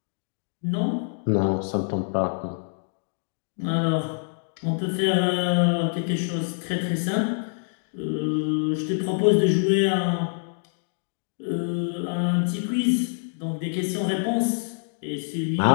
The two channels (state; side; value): silent; right; digital silence